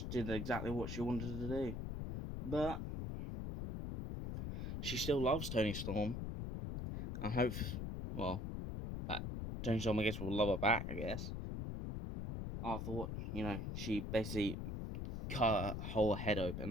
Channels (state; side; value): noise; left; rumble, 4 dB below the sound